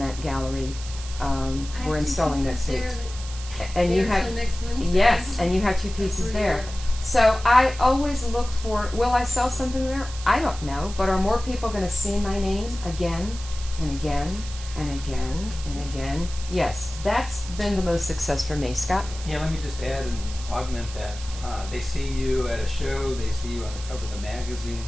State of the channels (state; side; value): noise; right; hiss, 14 dB below the sound